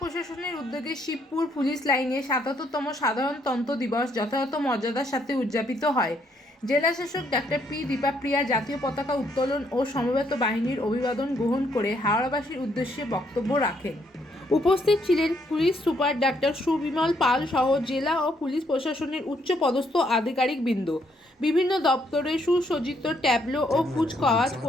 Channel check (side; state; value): both; normal; correlation 0.72